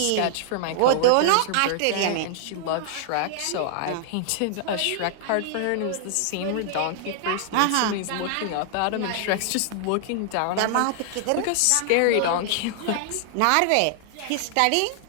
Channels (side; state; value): both; different; correlation -0.01